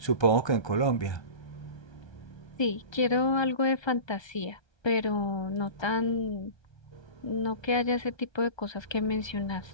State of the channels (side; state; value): right; late; 1.3 ms